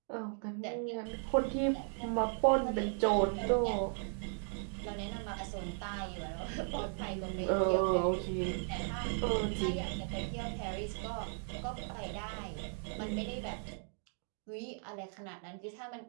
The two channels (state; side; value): silent; left; 53 dB below the other